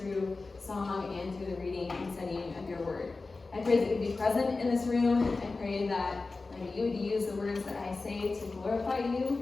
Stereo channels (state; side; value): quieter; right; 3.7 dB